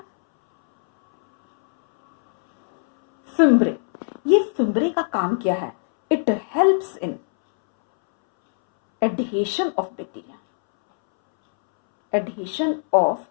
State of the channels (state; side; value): silent; right; 65 dB below the other